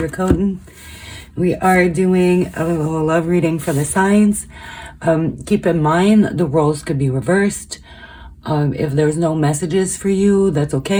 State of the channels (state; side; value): identical; both; correlation 1.00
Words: We are doing a little love reading for the signs. Keep in mind the roles could be reversed. If there's no messages for you, that's